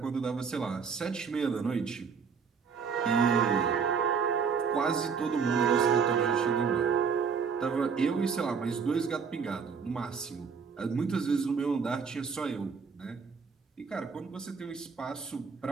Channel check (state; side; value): quieter; left; 6.0 dB